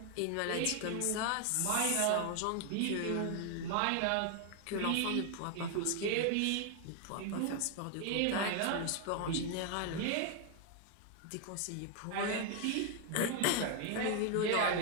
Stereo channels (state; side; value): different; both; correlation 0.00